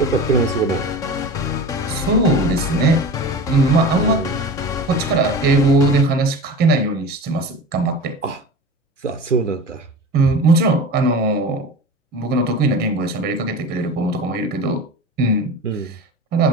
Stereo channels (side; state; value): both; normal; correlation 0.32